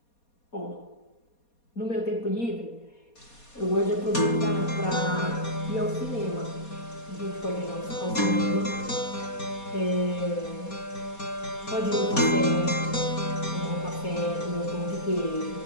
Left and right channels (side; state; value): right; late; 4.2 ms